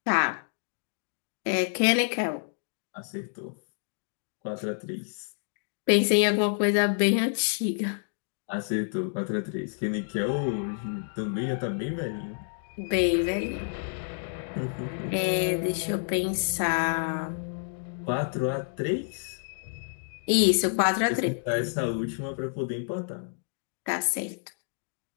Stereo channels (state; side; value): silent; right; digital silence